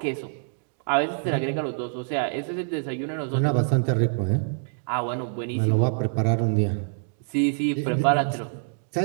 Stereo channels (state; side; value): silent; left; digital silence